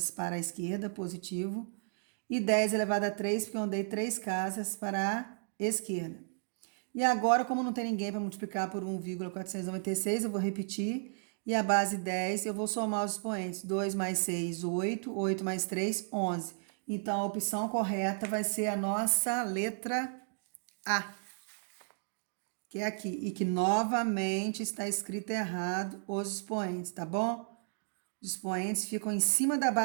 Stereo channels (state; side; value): silent; left; digital silence